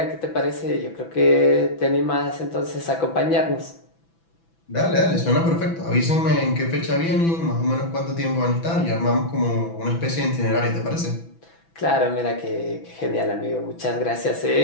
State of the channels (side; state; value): right; late; 6.0 ms